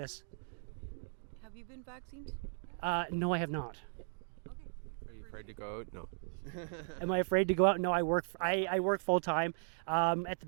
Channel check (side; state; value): left; silent; digital silence